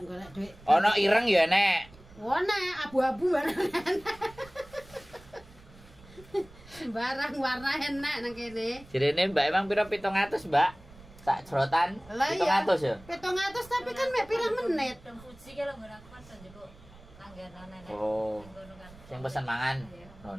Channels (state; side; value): noise; right; rumble, 22 dB below the sound